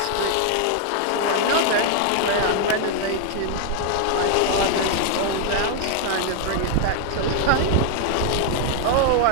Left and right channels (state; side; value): different; both; correlation 0.00